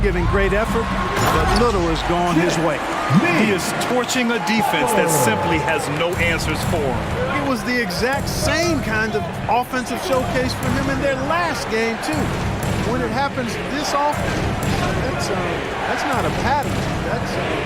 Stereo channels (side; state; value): both; identical; correlation 1.00